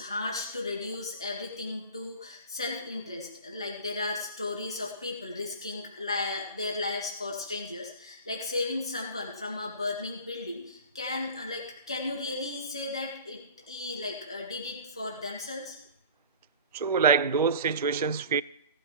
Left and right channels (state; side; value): inverted; both; correlation -0.39